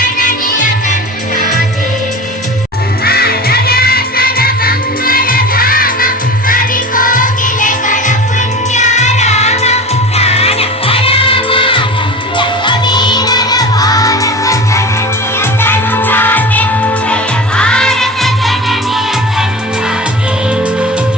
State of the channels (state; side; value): normal; both; correlation 0.33